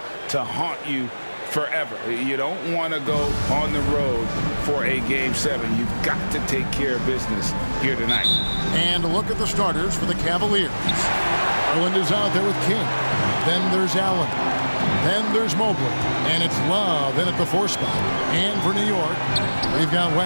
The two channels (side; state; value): both; inverted; correlation -1.00